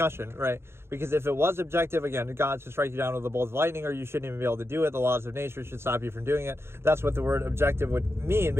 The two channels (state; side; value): late; left; 0.12 ms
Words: right? Because if it was objective, again, God should strike you down with a bolt of lightning, or you shouldn't even be able to do it. The laws of nature should stop you from doing it. That's what the word objective would mean,